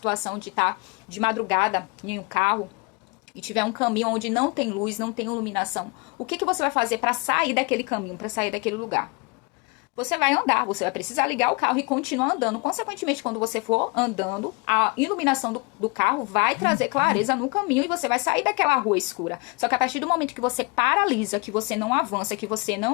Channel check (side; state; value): right; quieter; 28.3 dB